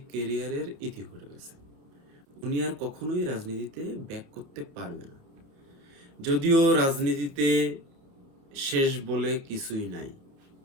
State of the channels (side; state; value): left; late; 30 ms